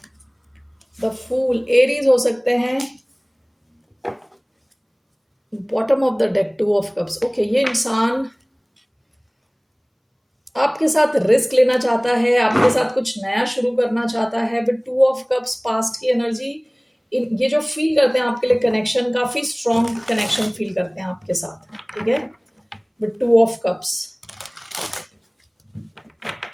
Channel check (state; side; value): identical; both; correlation 1.00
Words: द फूल, एरीज हो सकते हैं. Bottom of the deck, two of cups. Okay, ये इंसान आपके साथ रिस्क लेना चाहता है, आपके साथ कुछ नया शुरू करना चाहता है. With two of cups, past की एनर्जी, ये जो फील करते हैं आपके लिए कनेक्शन, काफी स्ट्रॉन्ग कनेक्शन फील करते हैं आपके साथ. ठीक है, with two of cups.